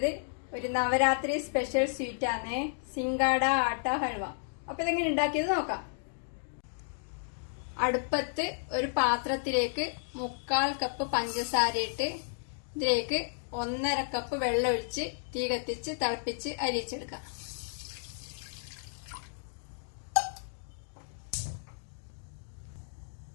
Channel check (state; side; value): silent; right; digital silence